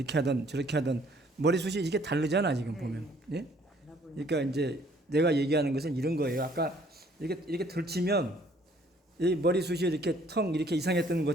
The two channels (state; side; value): normal; both; correlation 0.60